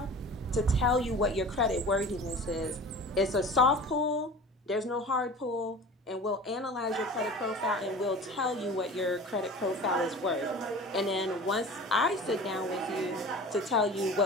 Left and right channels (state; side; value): normal; both; correlation 0.39